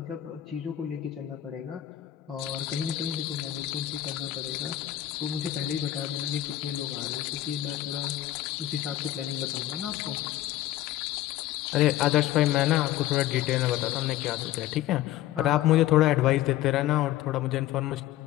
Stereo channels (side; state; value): right; quieter; 13.6 dB